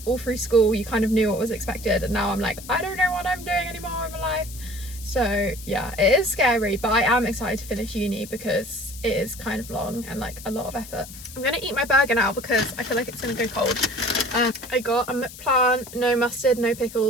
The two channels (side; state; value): left; noise; hiss, 15 dB below the sound